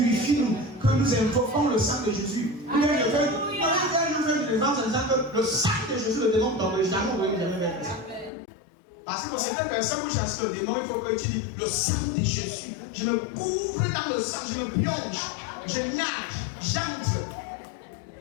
nous, que nous invoquons le sang de Jésus. Nous faire une défense en disant que le sang de Jésus, le démon tombe jamais, vous voyez jamais vers ça. Parce que pour certaines personnes, vous chassez le démon, il faut que tu dis le sang de Jésus. Je me couvre dans le sang, je me plonge, je nage, j'entre,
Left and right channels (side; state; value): right; drops out; at 8.3 s